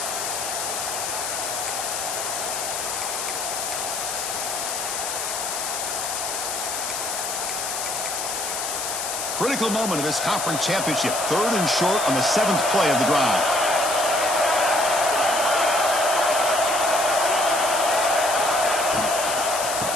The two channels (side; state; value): left; noise; hiss, 3 dB below the sound